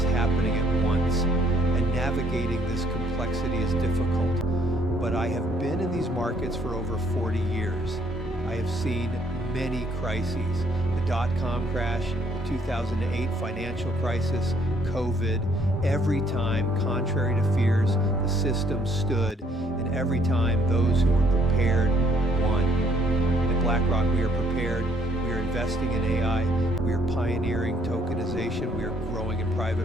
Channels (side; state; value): both; normal; correlation 0.65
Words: happening at once, and navigating this complexity is difficult. But I have been in these markets for over 40 years. I have seen many crises: the dot-com crash, the 2008 financial crisis, COVID. Every time, contrary to fears, the system stood, and every time those who were prepared won. At BlackRock, we are prepared. We are investing in AI. We are pioneering tokenization. We are growing in